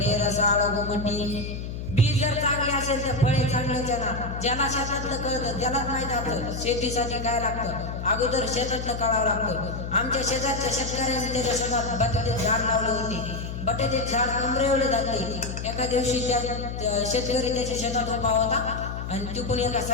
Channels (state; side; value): noise; left; hum, 6 dB below the sound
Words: रसाळ गोमटी. बी जर चांगले असेल तर फळे चांगलेच येणार. ज्याला शेतातलं कळतं त्यालाच माहित असतं शेतीसाठी काय लागतं. अगोदर शेतातलं कळावं लागतं. आमच्या शेजारच्या शेतकऱ्यांनी त्याच्या शेतात बटाट्याचे झाड लावले होते. बटाट्याचे झाड कमरेवले जाते. एका दिवशी त्या शेतकरी त्याच्या शेतात उभा होता आणि तिकडून एका